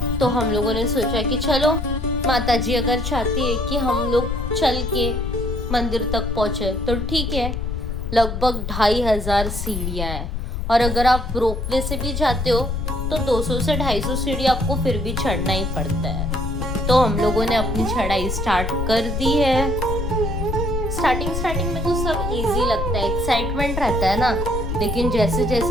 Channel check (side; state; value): left; noise; rumble, 3 dB below the sound